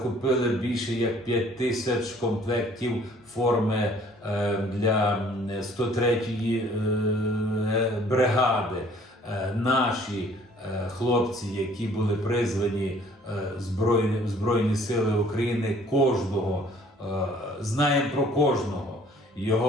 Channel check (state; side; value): normal; both; correlation 0.56